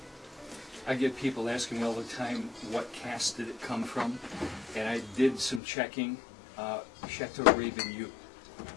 I get people asking me all the time, what cask did it come from? And I did some checking. Chateau Rayne-Vigneau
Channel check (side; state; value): right; drops out; at 5.6 s